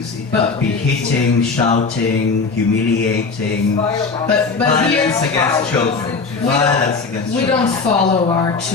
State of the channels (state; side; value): quieter; right; 4.5 dB